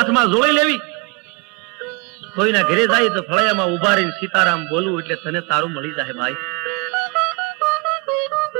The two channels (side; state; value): left; quieter; 28.3 dB